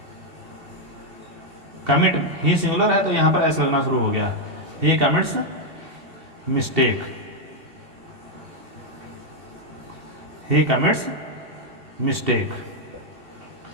कमिट ही सिंगुलर है तो यहां पर एस लगना शुरू हो गया। ही कमिट्स मिस्टेक, ही कमिट्स मिस्टेक।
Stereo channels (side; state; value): left; late; 2.7 ms